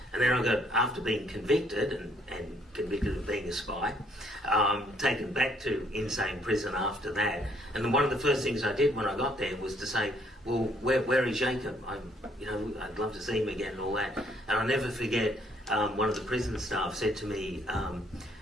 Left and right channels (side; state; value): both; normal; correlation 0.66